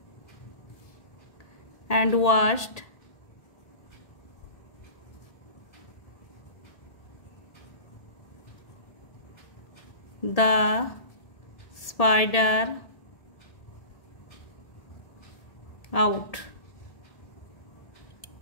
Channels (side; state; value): right; late; 1.8 ms